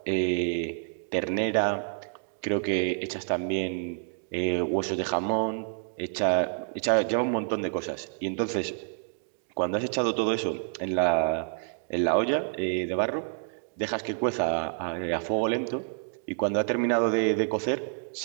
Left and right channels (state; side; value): silent; left; digital silence